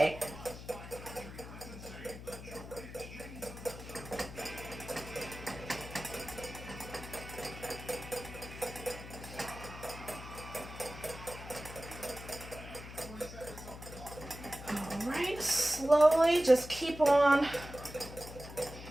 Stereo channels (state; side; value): noise; left; hum, 12 dB below the sound